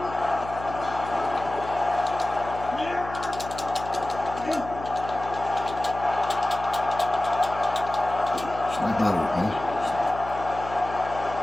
Snap out of it, man.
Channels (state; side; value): noise; left; hum, 12 dB below the sound